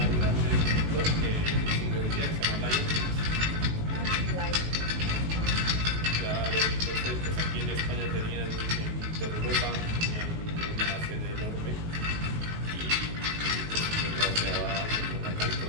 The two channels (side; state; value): left; late; 19 ms